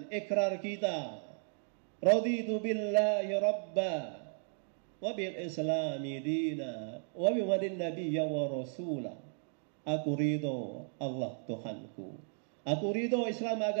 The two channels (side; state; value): left; silent; 54 dB below the other